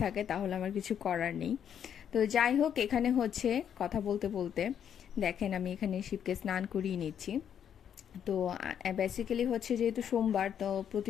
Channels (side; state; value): right; quieter; 8.8 dB